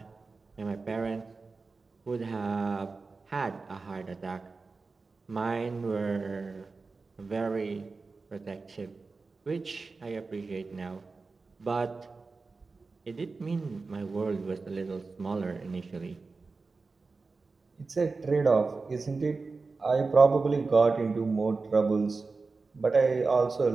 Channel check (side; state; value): left; quieter; 4.1 dB